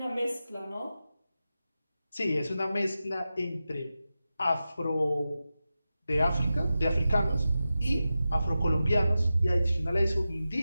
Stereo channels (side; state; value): both; inverted; correlation -0.92